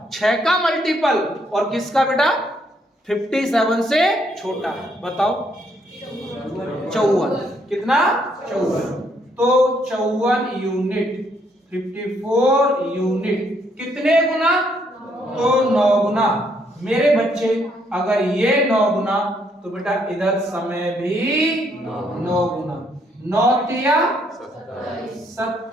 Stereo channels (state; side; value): normal; both; correlation 0.71